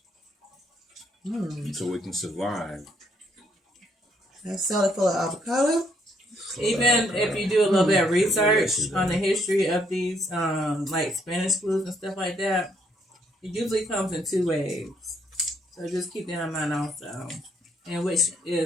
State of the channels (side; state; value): both; normal; correlation 0.70